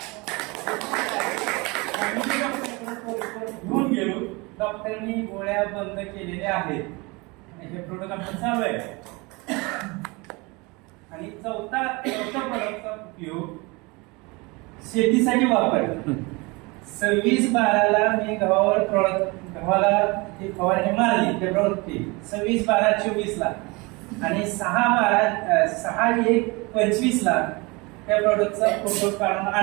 घेऊन गेलो. डॉक्टरनी गोळ्या बंद केलेल्या आहेत. हे प्रोडक्ट आपण चालू आहे. आणि चौथा प्रोडक्टचा उपयोग शेतीसाठी वापरला. 26/12ला मी गव्हाला ती फवारणी मारली फेब्रुवारी 26/12/24ला आणि 6/1/25ला त्या प्रोडक्टचा फोटो काढून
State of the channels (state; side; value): quieter; left; 26.0 dB